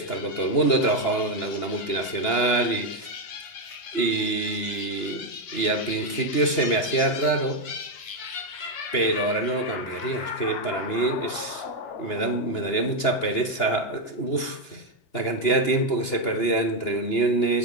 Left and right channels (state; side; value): late; right; 2.9 ms